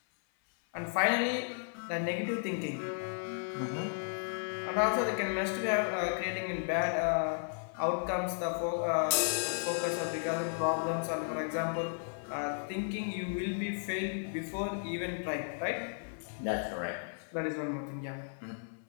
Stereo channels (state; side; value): silent; right; 55 dB below the other